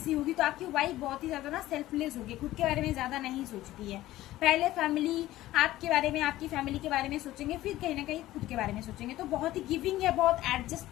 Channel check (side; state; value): right; quieter; 15.7 dB